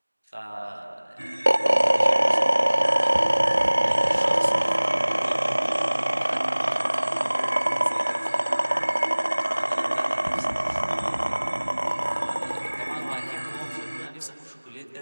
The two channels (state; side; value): inverted; both; correlation -1.00